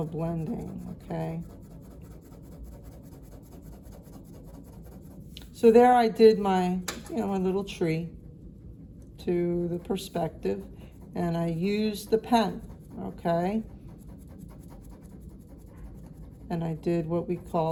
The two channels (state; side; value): identical; both; correlation 1.00